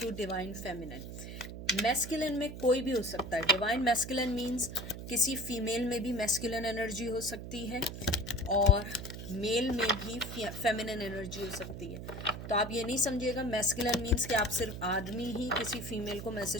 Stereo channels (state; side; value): noise; right; hum, 9 dB below the sound